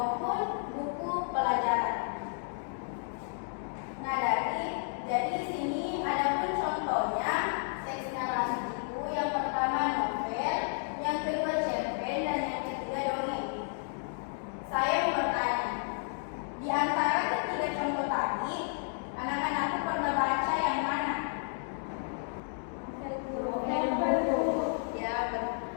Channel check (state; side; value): silent; right; digital silence